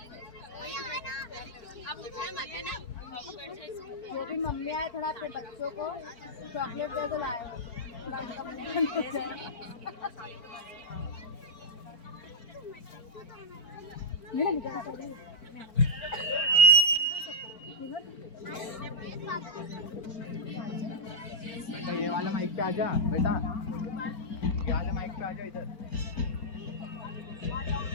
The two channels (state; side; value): late; right; 4.4 ms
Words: जो भी मम्मी आए थोड़ा अपने बच्चों को चॉकलेट दे दो लाए ये वाला माइक पे आजा बेटा, ये वाले माइक पे आजा इधर।